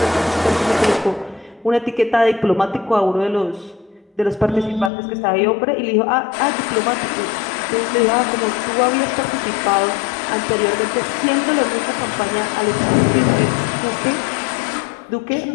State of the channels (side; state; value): right; drops out; at 4.9 s